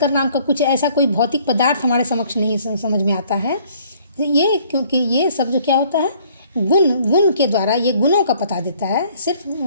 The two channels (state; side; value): inverted; both; correlation -0.59